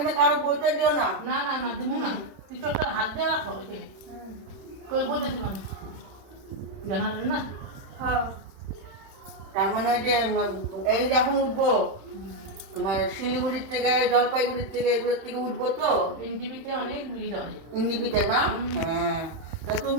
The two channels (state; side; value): late; left; 31 ms